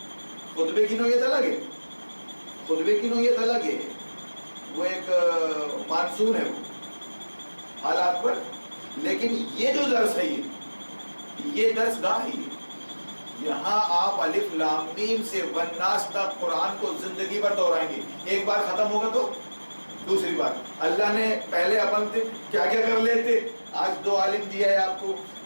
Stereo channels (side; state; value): both; inverted; correlation -1.00